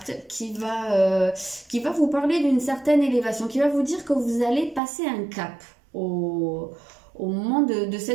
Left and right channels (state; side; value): drops out; left; at 4.8 s